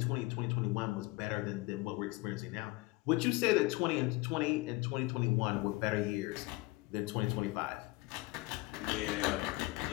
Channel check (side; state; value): right; quieter; 22.5 dB